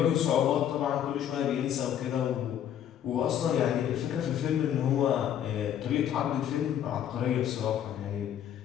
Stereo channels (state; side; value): quieter; right; 10.0 dB